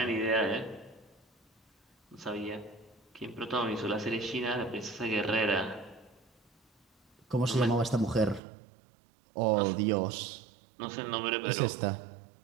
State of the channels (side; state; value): left; drops out; at 8.4 s